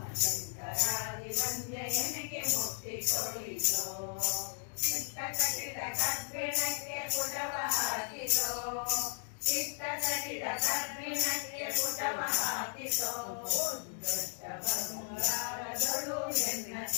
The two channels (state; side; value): silent; right; 54 dB below the other